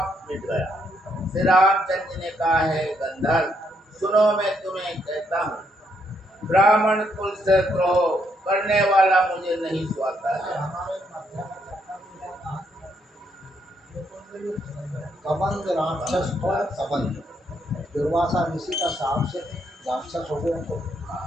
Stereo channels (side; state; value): both; normal; correlation 0.75